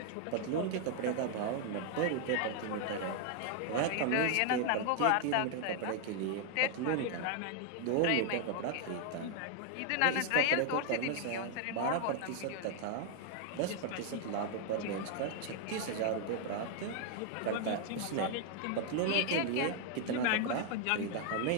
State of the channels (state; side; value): different; both; correlation 0.00